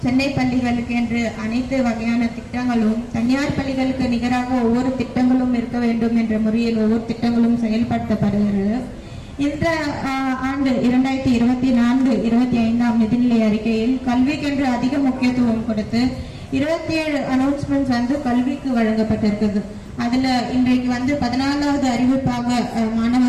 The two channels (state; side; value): identical; both; correlation 1.00